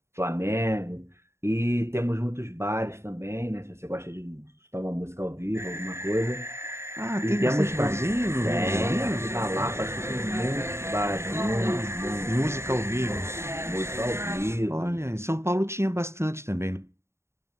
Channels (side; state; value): left; late; 0.13 ms